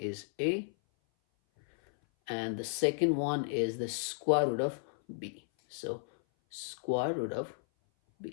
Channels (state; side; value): silent; right; 55 dB below the other